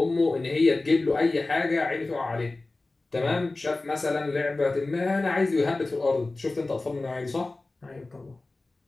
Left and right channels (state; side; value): quieter; right; 3.2 dB